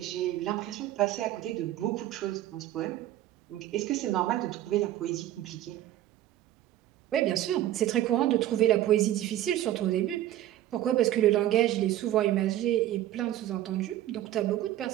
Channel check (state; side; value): quieter; left; 13.5 dB